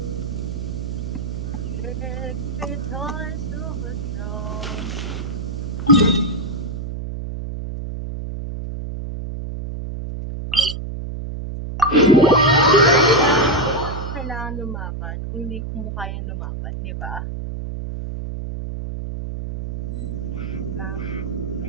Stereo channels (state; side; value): noise; right; hum, 6 dB below the sound